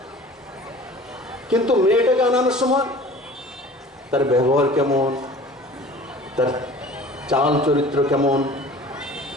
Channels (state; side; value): normal; both; correlation 0.45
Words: কিন্তু মেয়েটাকে আনানোর সময় তার ব্যবহার কেমন, তার চাল চরিত্র কেমন,